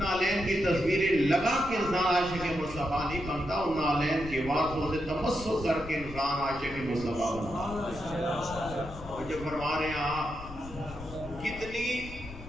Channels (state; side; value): noise; left; rumble, 13 dB below the sound